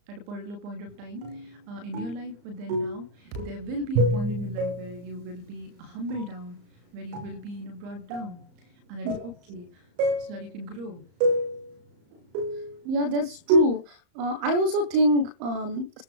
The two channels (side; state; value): left; late; 34 ms